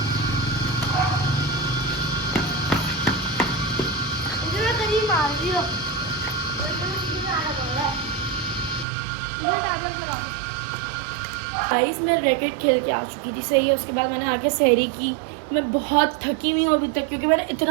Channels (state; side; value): drops out; left; at 8.8 s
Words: गाइस मैं रैकेट खेल के आ चुकी थी। सही है। उसके बाद मैंने आके सहरी की। मैं बहुत थकी हुई हूँ अभी तक, क्योंकि मैंने